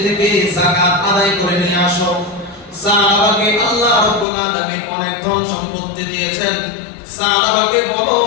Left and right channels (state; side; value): drops out; right; at 4.2 s